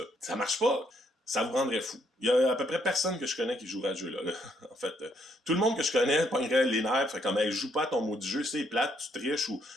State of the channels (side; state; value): both; normal; correlation 0.72